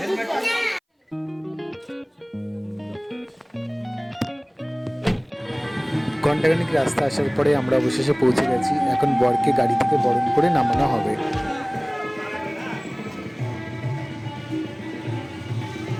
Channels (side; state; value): both; identical; correlation 1.00